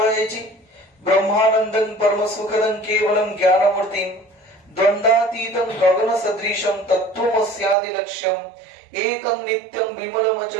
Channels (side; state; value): left; drops out; at 7.8 s